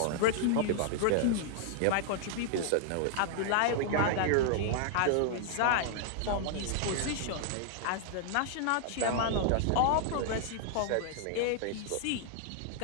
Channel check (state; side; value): different; both; correlation -0.01